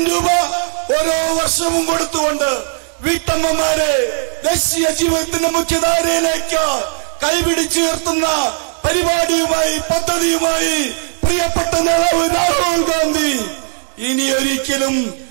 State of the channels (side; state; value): left; silent; digital silence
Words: രൂപ ഓരോ വർഷവും കൊടുത്തുകൊണ്ട് വീട്ടമ്മമാരെ ദേശീയ ജീവിതത്തിന്റെ മുഖ്യധാരയിലേക്ക് കൈപിടിച്ചുയർത്തുന്ന പരിപാടിയുമായി, പദ്ധതിയുമായി പ്രിയപ്പെട്ട നേതാവ് രാഹുൽ ഗാന്ധി ഇനി ഒരിക്കലും